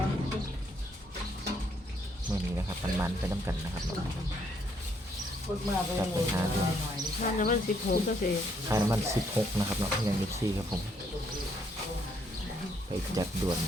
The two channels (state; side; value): normal; both; correlation 0.71